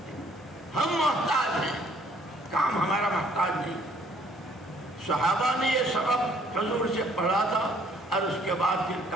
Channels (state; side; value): normal; both; correlation 0.62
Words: ہم محتاج ہیں، کام ہمارا محتاج نہیں. صحابہ نے یہ سبق حضور سے پڑھا تھا اور اس کے بعد پھر